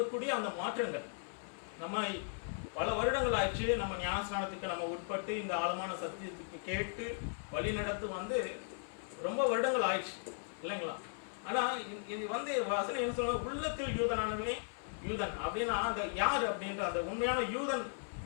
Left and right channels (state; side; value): silent; right; 53 dB below the other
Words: அந்த மாற்றங்கள் நம்ம பல வருடங்கள் ஆயிடுச்சு. நம்ம ஞானஸ்நானத்துக்கு நம்ம உட்பட்டு இந்த ஆழமான சத்தியத்துக்கு கேட்டு வழி நடத்து ரொம்ப வருடங்கள் ஆயிடுச்சு இல்லைங்களா? ஆனா இது வசனம் என்ன சொல்ற, உள்ளத்தில் யூதனானவனே யூதன் அப்படின்னா அந்த யார் அப்படின்ற அந்த உண்மையான யூதன்